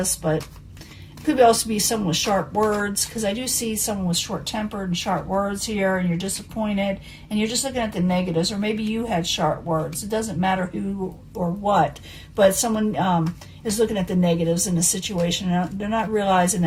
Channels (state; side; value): identical; both; correlation 1.00